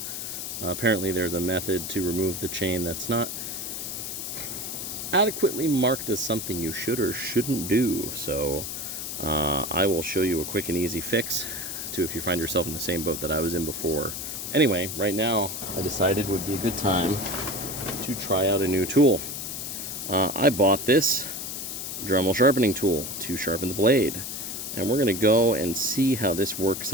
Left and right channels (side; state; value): left; noise; hiss, 6 dB below the sound